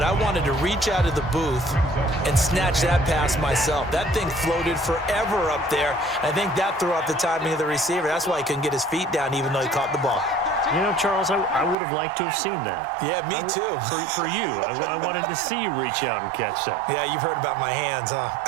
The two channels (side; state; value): left; drops out; at 11.8 s